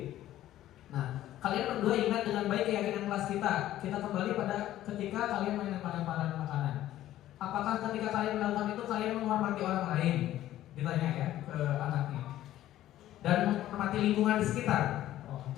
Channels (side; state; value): right; quieter; 13.5 dB